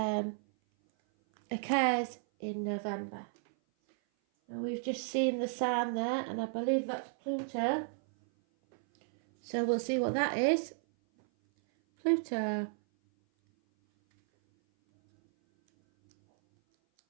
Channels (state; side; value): silent; left; 56 dB below the other